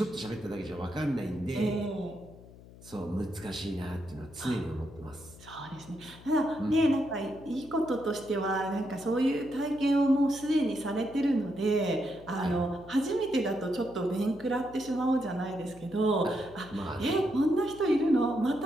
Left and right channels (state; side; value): noise; left; hum, 20 dB below the sound